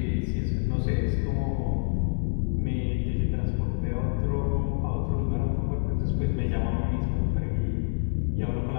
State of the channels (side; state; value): right; silent; 60 dB below the other